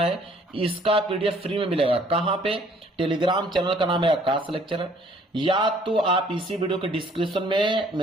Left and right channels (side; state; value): both; normal; correlation 0.59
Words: इसका पीडीएफ फ्री में मिलेगा। कहां पे, टेलीग्राम चैनल का नाम है आकाश लेक्चरर, या तो आप इसी वीडियो के डिस्क्रिप्शन में